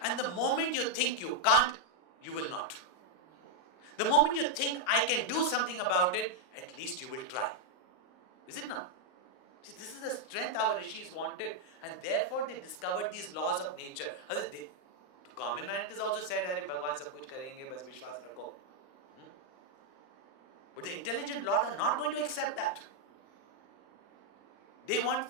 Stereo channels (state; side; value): late; right; 39 ms